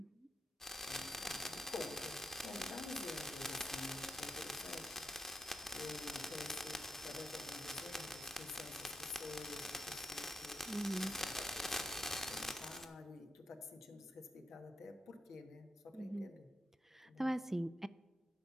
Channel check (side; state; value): both; normal; correlation 0.77